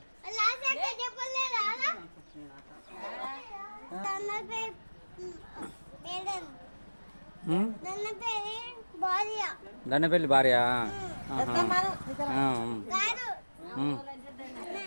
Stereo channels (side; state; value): both; inverted; correlation -1.00